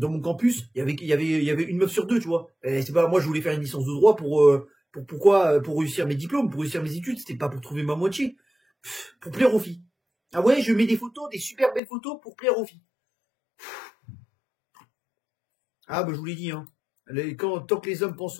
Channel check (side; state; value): right; drops out; at 11.8 s